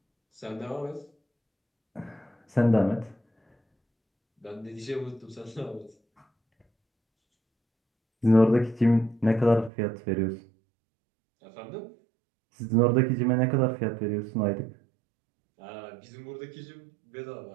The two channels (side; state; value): left; drops out; at 9.7 s